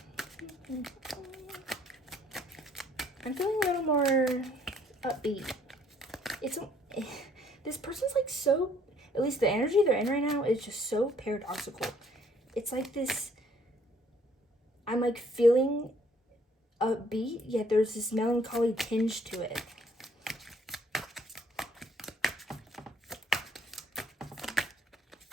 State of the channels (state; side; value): normal; both; correlation 0.63